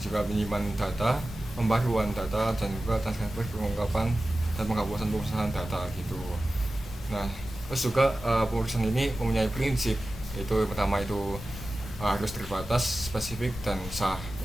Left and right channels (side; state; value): both; normal; correlation 0.95